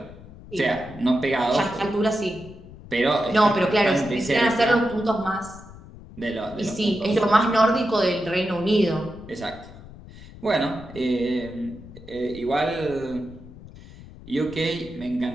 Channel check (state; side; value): noise; left; rumble, 18 dB below the sound